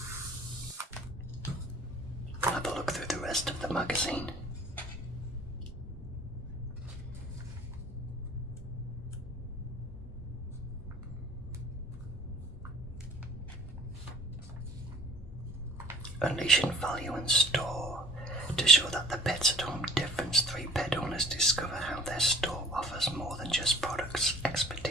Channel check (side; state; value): both; normal; correlation 0.50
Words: We'll have a look through the rest of the magazine. Unleashing value in store. To show that the Pets at Home difference, 3 pet owners discover how their store offers more than just products.